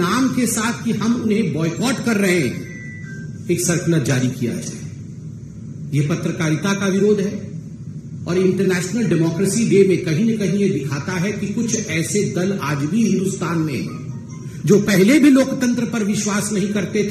के साथ कि हम उन्हें बॉयकॉट कर रहे हैं, एक सर्कुलर जारी किया जाए। यह पत्रकारिता का विरोध है और इंटरनेशनल डेमोक्रेसी डे में कहीं न कहीं यह दिखाता है कि कुछ ऐसे दल आज भी हिंदुस्तान में हैं जो पहले भी लोकतंत्र पर विश्वास नहीं करते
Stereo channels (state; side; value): identical; both; correlation 1.00